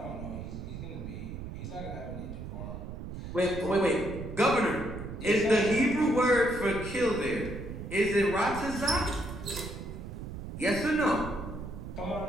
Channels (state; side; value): noise; right; rumble, 8 dB below the sound